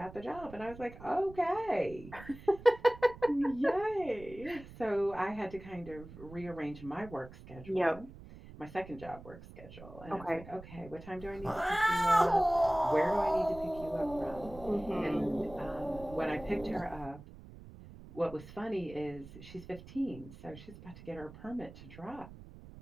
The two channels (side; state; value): right; noise; rumble, 17 dB below the sound